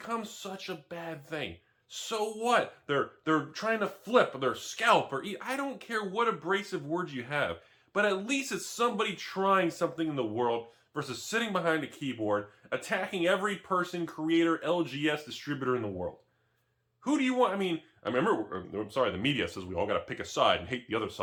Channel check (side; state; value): both; identical; correlation 1.00